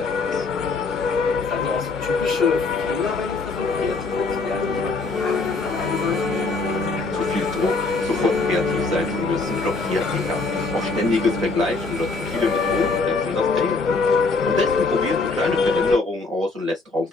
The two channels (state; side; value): quieter; right; 3.8 dB